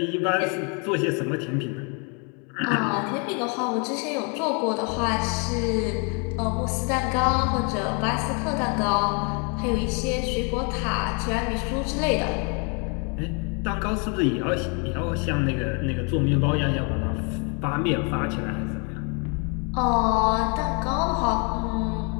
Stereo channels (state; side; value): quieter; right; 35.3 dB